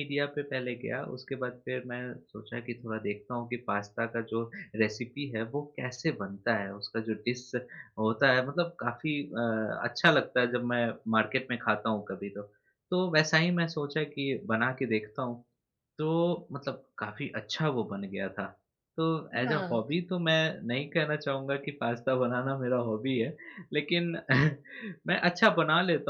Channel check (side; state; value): both; identical; correlation 1.00